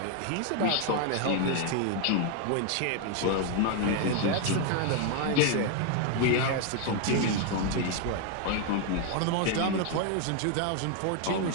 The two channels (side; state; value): both; different; correlation 0.01